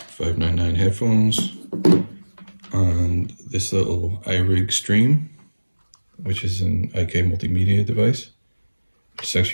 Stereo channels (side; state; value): both; inverted; correlation -1.00